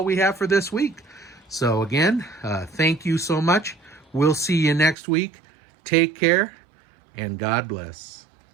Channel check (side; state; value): left; drops out; at 5.0 s